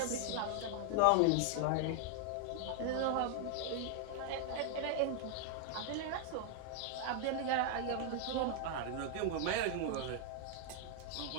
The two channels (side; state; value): both; different; correlation 0.00